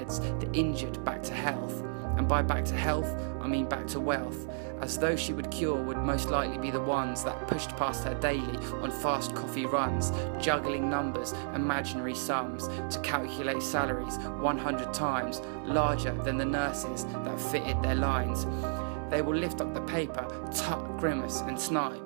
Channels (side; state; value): left; silent; digital silence